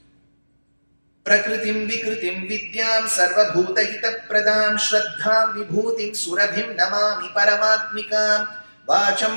Prakritim Vikritim Vidyam Sarvabhuta Hita Pradam Shraddham Vibhutim Surabhim Namami Paramatmikam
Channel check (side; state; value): both; inverted; correlation -1.00